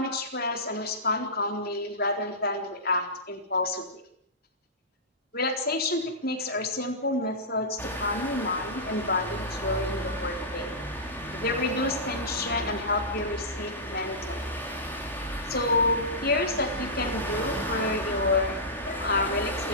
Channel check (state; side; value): normal; both; correlation -0.15